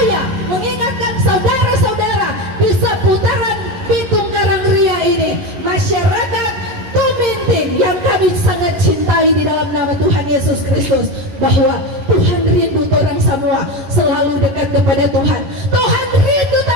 mengingatkan saudara-saudara di seputaran Pitung Karangria ini, masyarakat Tuminting yang kami sangat cintai di dalam nama Tuhan Yesus Kristus, bahwa Tuhan rindu orang semua selalu dekat kepada Tuhan. Tuhan rindu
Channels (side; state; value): left; late; 11 ms